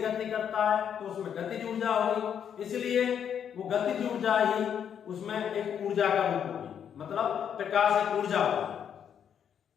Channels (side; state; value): right; quieter; 8.4 dB